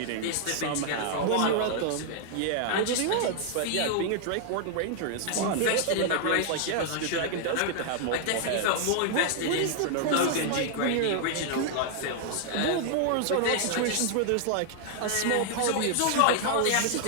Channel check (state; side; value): different; both; correlation 0.00